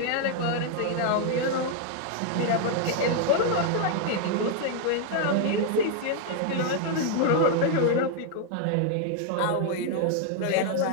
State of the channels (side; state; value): both; different; correlation 0.00